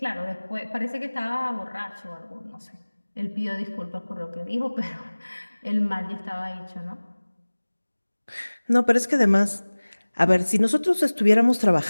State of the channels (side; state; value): both; inverted; correlation -1.00